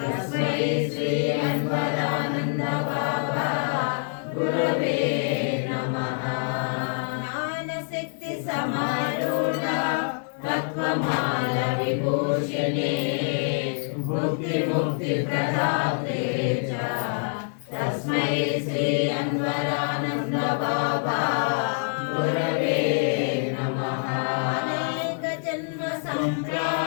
श्री अन्वरानन्द बाबा गुरवे नमः। ज्ञानशक्ति समारूढ तत्त्वमाल विभूषिणे मुक्तिप्रदाते च तस्मै श्री अन्वरानन्द बाबा गुरवे नमः। अनेक जन्म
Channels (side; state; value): right; silent; 61 dB below the other